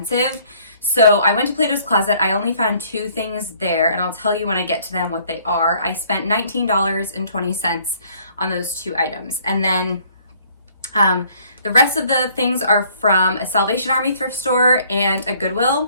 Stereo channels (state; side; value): inverted; both; correlation -0.60